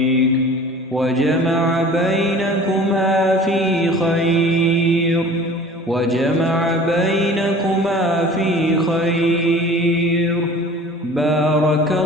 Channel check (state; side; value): normal; both; correlation 0.44